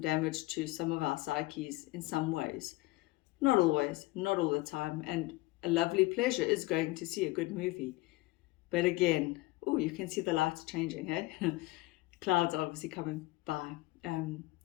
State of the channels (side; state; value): right; quieter; 20.4 dB